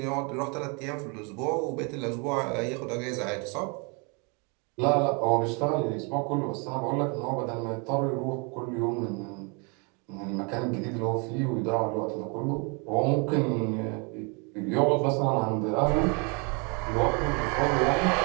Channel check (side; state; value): left; quieter; 33.4 dB